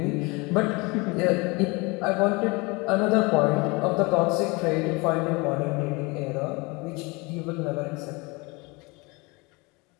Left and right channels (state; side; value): quieter; right; 26.4 dB